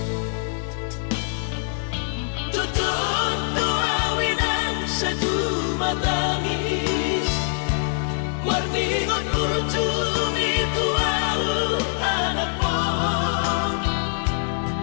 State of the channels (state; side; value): silent; right; digital silence